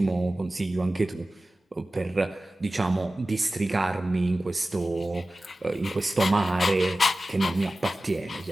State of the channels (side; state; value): both; normal; correlation 0.96